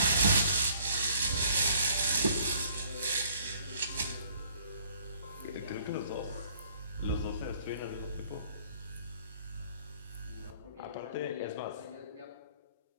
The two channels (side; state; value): both; inverted; correlation -0.59